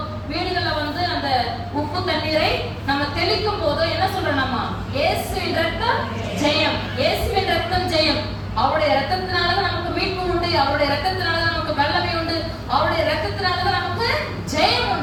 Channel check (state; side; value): identical; both; correlation 1.00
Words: வீடுகள்ல வந்து அந்த உப்பு தண்ணீரை நம்ம தெளிக்கும் போதோ என்ன சொல்றோம் நம்ம? இயேசுவின் இரத்தம் ஜெயம், இயேசுவின் இரத்தம் ஜெயம். அவருடைய இரத்தத்தினாலதான் நமக்கு மீட்பு உண்டு, அவருடைய இரத்தத்தினாலதான் நமக்கு வல்லமை உண்டு, அவருடைய இரத்தத்தினாலதான் நமக்கு ஜெயம்